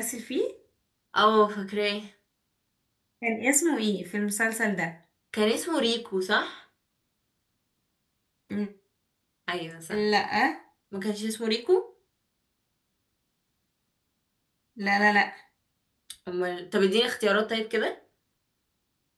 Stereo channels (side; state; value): both; identical; correlation 1.00